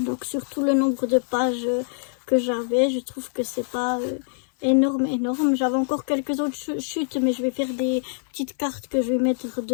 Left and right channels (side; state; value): right; silent; 58 dB below the other